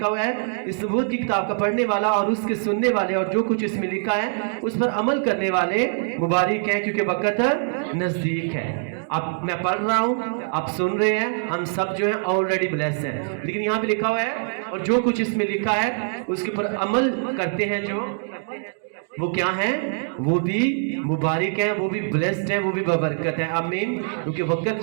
हुआ है, इस नबूवत की किताब का पढ़ने वाला और उसके सुनने वाले और जो कुछ इसमें लिखा है उस पर अमल करने वाले मुबारक हैं, क्योंकि वक़्त नज़दीक है। अब मैं पढ़ रहा हूँ, आप सुन रहे हैं, हम सब जो है ऑलरेडी ब्लेस्ड हैं। लेकिन यहाँ पे लिखा हुआ है, और जो कुछ इसमें लिखा है उसके ऊपर अमल करते हैं, जो वो क्या है? वो भी मुबारक है, वो भी ब्लेस्ड है, वो भी बबरकत है। आमीन। क्योंकि वक़्त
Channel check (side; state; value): left; silent; digital silence